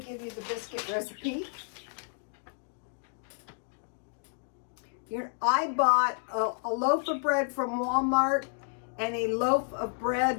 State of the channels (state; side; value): silent; right; digital silence